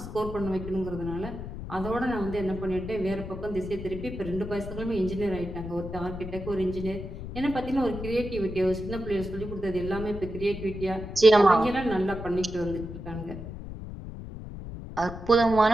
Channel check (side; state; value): left; noise; rumble, 9 dB below the sound